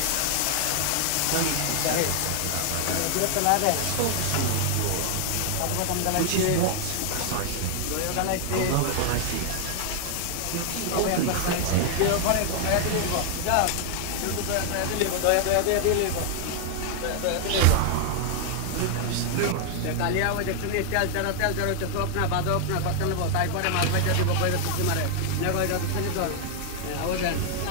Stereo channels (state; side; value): different; both; correlation 0.00